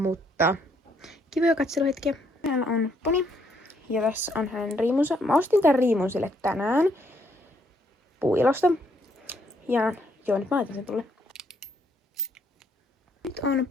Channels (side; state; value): both; normal; correlation 0.71